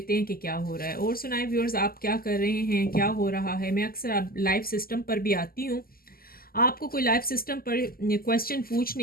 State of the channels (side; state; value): right; late; 0.42 ms